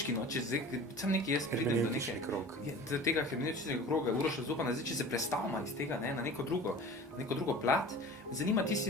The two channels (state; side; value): normal; both; correlation 0.39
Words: no, če zdaj, sam nekaj jaz pridem do Hermeneutični neke, krog. do tega hermeneutičnega kroga, Uroša Zupana, zdaj, če se prestavimo iz tega, ne, na neko drugo plat, me zanima, ti